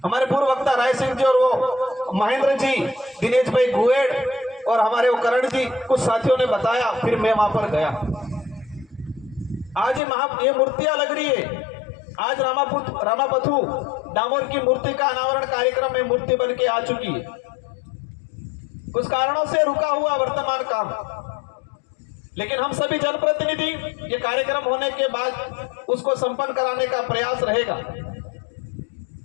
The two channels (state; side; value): drops out; right; at 10.0 s